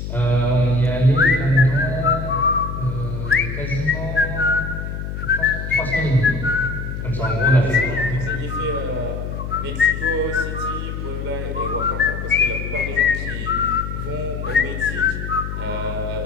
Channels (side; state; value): left; noise; hum, 6 dB below the sound